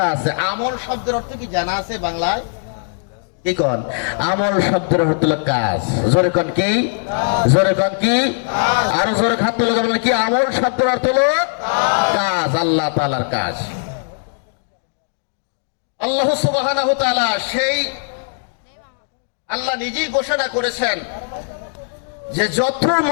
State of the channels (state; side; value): silent; right; digital silence